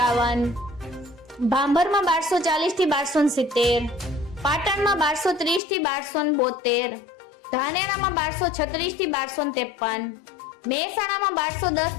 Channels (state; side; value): drops out; right; at 5.6 s